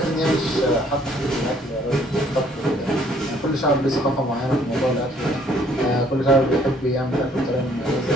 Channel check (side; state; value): both; normal; correlation 0.62